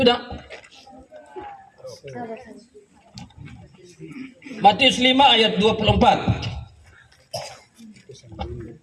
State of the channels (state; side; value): identical; both; correlation 1.00